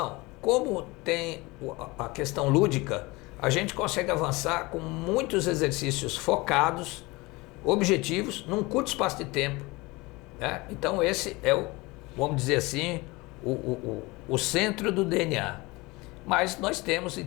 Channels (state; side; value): quieter; right; 23.3 dB